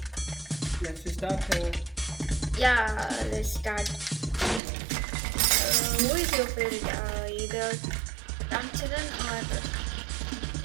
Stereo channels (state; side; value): drops out; left; at 4.6 s